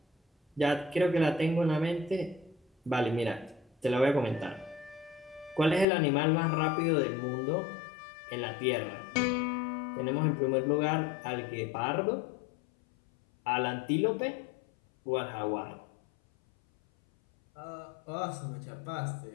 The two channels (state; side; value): drops out; right; at 5.9 s